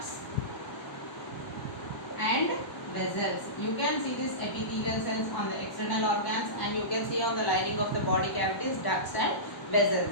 and vessels. You can see these epithelial cells on the external organs, and you can see on the lining of the body cavities, ducts and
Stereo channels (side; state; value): right; late; 1.0 ms